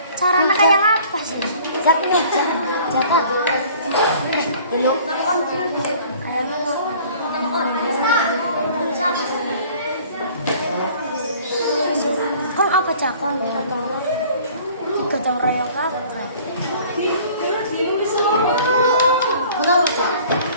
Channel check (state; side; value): inverted; both; correlation -0.51